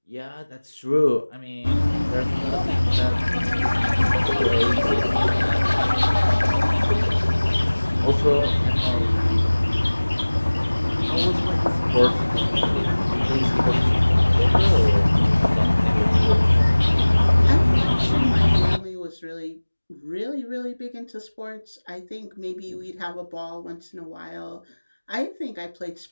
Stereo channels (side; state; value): both; inverted; correlation -1.00